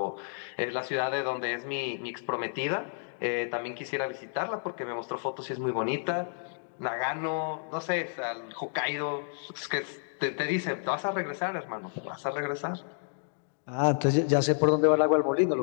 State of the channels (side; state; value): right; silent; digital silence